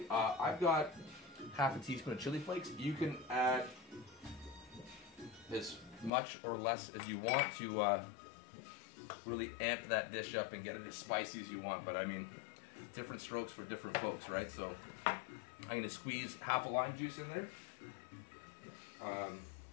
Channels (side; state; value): right; drops out; at 6.1 s